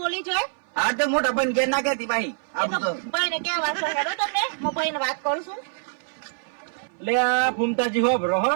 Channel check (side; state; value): left; silent; 58 dB below the other